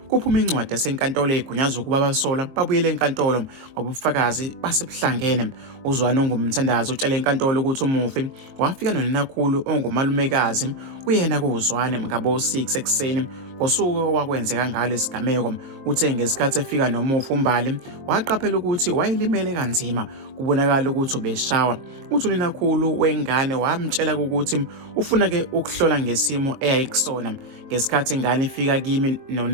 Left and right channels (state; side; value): late; left; 22 ms